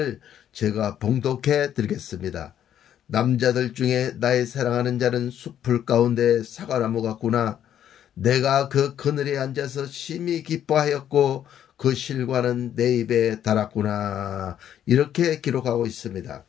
제가 봉독해 드리겠습니다. 남자들 중에 나의 사랑하는 자는 숲풀 가운데 사과나무 같구나. 내가 그 그늘에 앉아서 심히 기뻐하였고 그 실과는 내 입에 달았구나. 이렇게 기록하고 있습니다.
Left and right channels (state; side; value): quieter; right; 10.3 dB